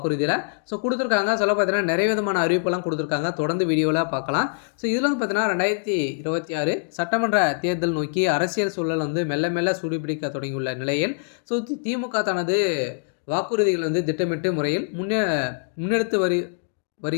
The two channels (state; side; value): silent; right; digital silence